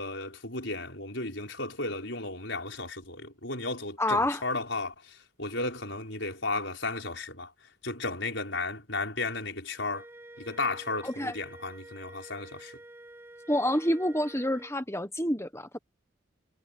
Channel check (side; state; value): both; normal; correlation 0.31